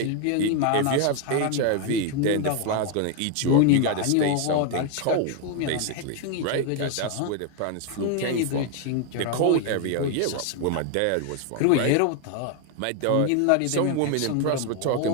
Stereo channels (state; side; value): different; both; correlation 0.01